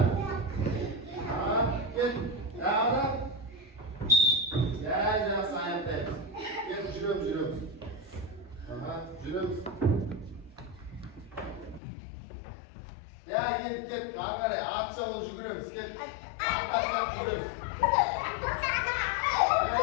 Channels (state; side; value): drops out; right; at 11.8 s